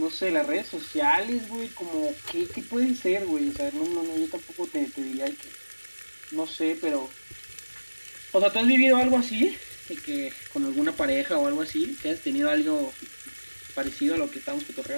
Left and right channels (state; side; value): inverted; both; correlation -1.00